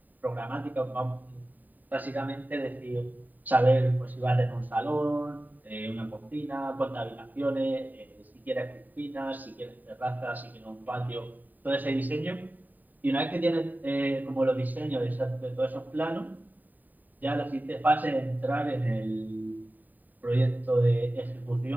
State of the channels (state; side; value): late; left; 0.086 ms